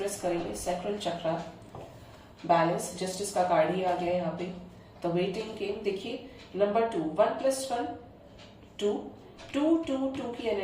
करेंगे। सैक्रल चक्रा, बैलेंस, जस्टिस का कार्ड ही आ गया यहाँ पे। द वेटिंग गेम, देखिए नंबर 2, 1 + 1 2, 2 2 2 की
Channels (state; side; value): identical; both; correlation 1.00